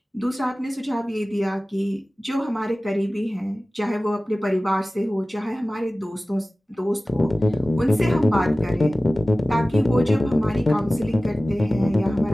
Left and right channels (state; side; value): normal; both; correlation 0.97